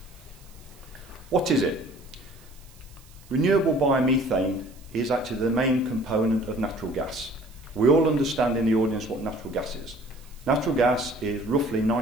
What is it? Renewable biomethane is actually the main component of natural gas. We all understand in the audience what natural gas is. Natural gas is roughly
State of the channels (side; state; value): right; noise; hiss, 26 dB below the sound